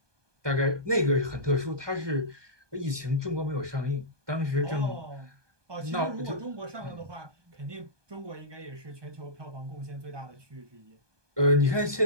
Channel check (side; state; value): left; late; 1.2 ms